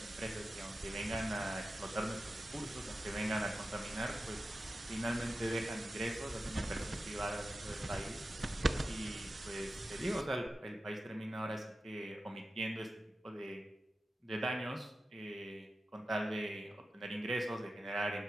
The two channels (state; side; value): normal; both; correlation 0.93